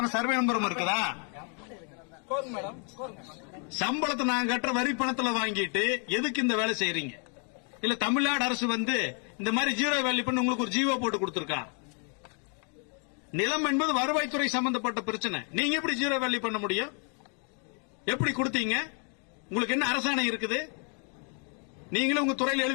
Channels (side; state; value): right; quieter; 39.9 dB